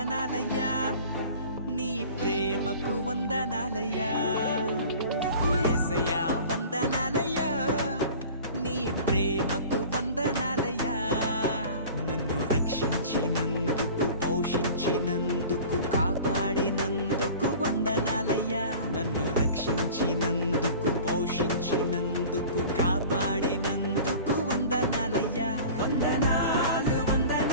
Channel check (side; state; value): both; inverted; correlation -0.42